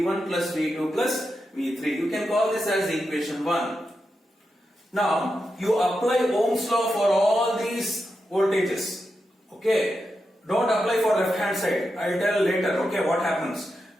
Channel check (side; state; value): both; normal; correlation 0.88